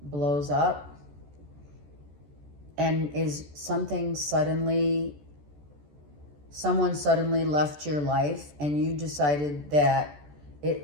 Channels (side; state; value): left; late; 14 ms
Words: blows up and is someone suddenly left your life and you decided that